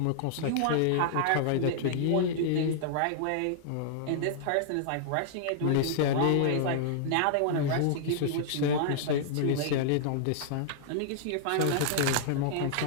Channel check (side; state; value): both; different; correlation -0.01